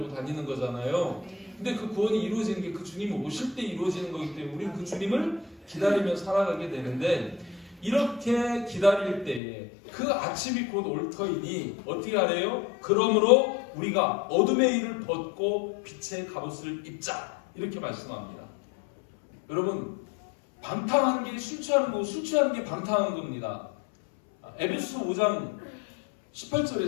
다니는 거잖아요. 근데 그 구원이 이루어지는 게 그 주님이 오실 때 이루어지는 거기 때문에 우리는 그 주님을 기다리며 살아가게 되는데, 이렇게 기다릴 때에 그 아침이 곧 올 터이니 어떻게 하래요? 그러므로 우리가 어둠의 일을 벗고 빛의 갑옷을 입자, 이렇게 말씀합니다. 여러분, 방탕하는 게 술 취하는 거고 술 취하는 게 방탕한 겁니다. 에베소서 5장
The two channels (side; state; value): right; drops out; at 9.4 s